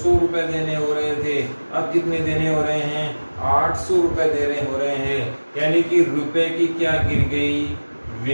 रुपए देने हो रहे थे, अब कितने देने हो रहे हैं, 800 रुपए देने हो रहे हैं। यानी कि रुपए की क्या गिर गई,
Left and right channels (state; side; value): inverted; both; correlation -1.00